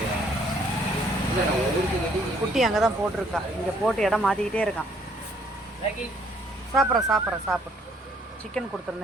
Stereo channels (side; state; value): both; normal; correlation 0.64